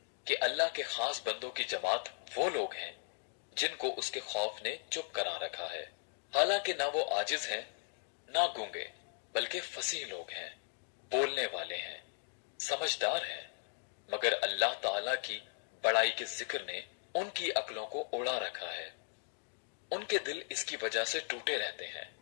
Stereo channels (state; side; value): silent; right; 53 dB below the other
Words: कि अल्लाह के खास बंदों की जमात वो लोग हैं जिनको उसके खौफ ने चुप करा रखा है। हालांकि ना वो आजिज हैं ना गूंगे, बल्कि फसीह लोग हैं, बोलने वाले हैं, समझदार हैं, मगर अल्लाह ताला की बड़ाई के जिक्र ने उनकी अक्लों को उड़ा रखा है। उनके दिल इसकी वजह से टूटे रहते हैं